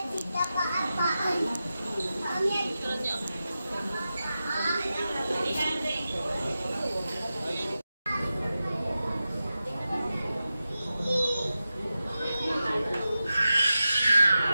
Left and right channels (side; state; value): both; inverted; correlation -0.92